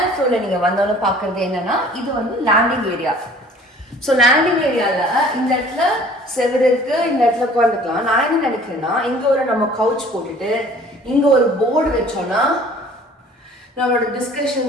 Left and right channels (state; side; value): normal; both; correlation 0.51